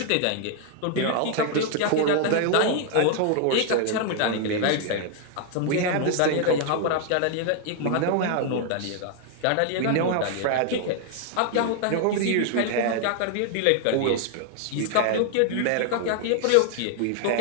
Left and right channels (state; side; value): different; both; correlation 0.00